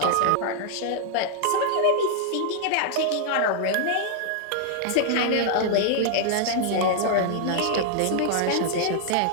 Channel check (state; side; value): different; both; correlation 0.00